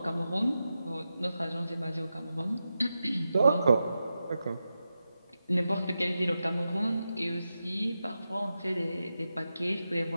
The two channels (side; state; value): both; inverted; correlation -0.91